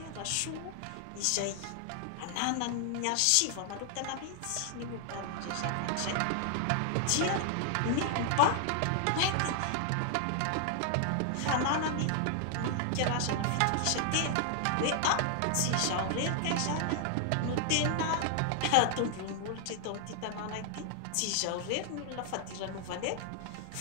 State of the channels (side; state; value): both; different; correlation 0.00